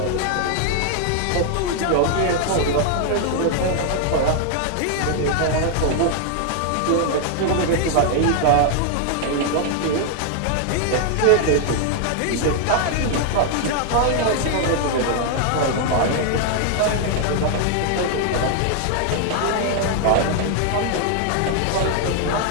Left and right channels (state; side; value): different; both; correlation 0.00